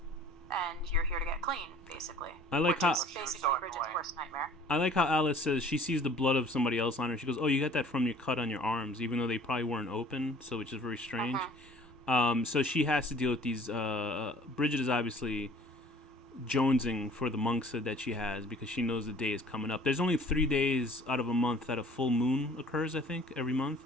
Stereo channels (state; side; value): normal; both; correlation 0.51